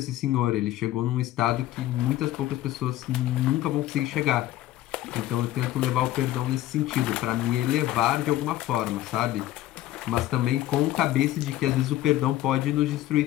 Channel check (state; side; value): quieter; right; 14.6 dB